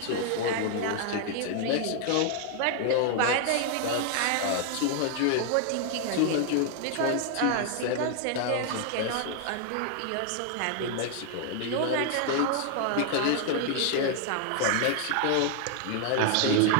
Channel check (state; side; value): different; both; correlation 0.00